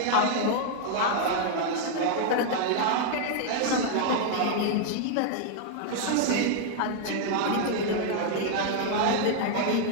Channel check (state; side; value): different; both; correlation 0.00